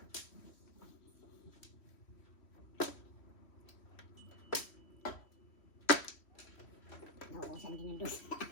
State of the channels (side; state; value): right; late; 3.1 ms